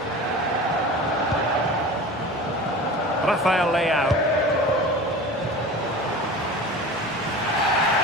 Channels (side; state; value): both; normal; correlation 0.35